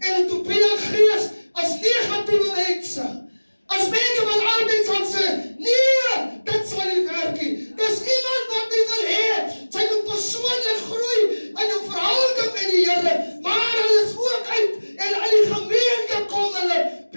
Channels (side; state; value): both; inverted; correlation -1.00